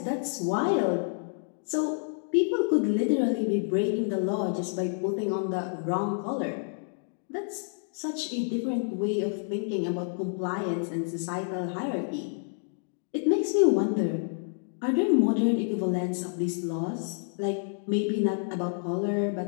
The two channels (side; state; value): right; silent; digital silence